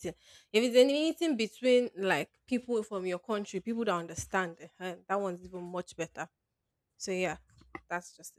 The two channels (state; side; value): identical; both; correlation 1.00